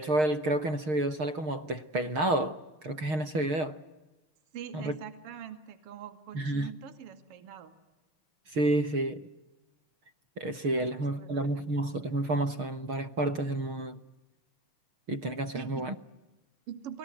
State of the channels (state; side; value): late; left; 6.5 ms